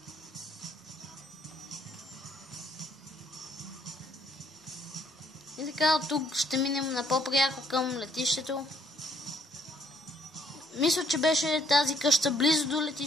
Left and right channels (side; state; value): both; normal; correlation 0.66